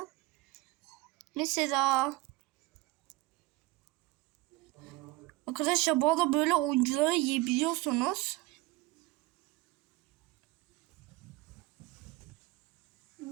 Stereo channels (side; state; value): left; quieter; 19.9 dB